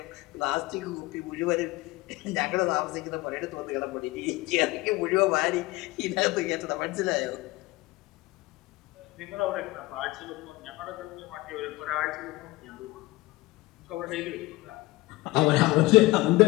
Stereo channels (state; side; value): quieter; right; 20.3 dB